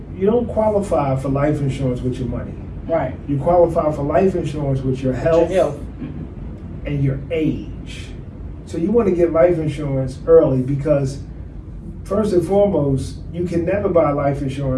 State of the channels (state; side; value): identical; both; correlation 1.00